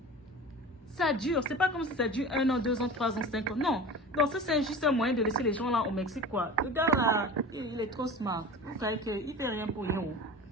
Ça dure. C'est pas comme si ça dure 1 an, 2 ans, 3 ans, 5 ans. Non. Donc, ça, c'est juste un moyen de laisser les gens là au Mexique, quoi. Le gars là, il est trop smart. Vous savez qu'il fait rien pour rien.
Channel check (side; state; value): both; normal; correlation 0.34